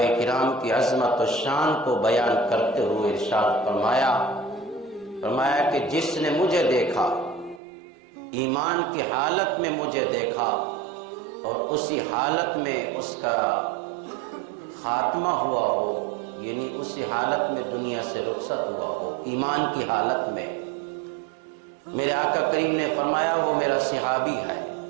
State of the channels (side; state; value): left; drops out; at 7.6 s